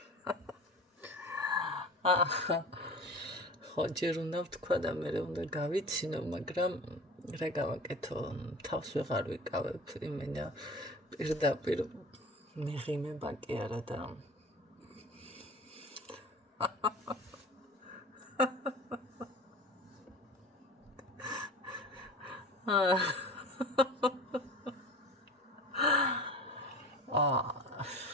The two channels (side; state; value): both; normal; correlation 0.37